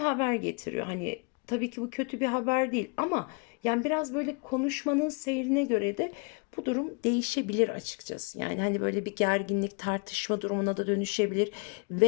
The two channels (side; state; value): right; quieter; 34.4 dB